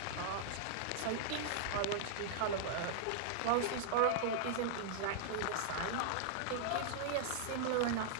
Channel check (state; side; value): different; both; correlation -0.01